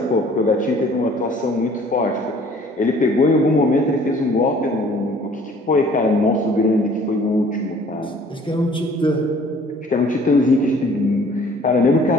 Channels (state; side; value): normal; both; correlation 0.54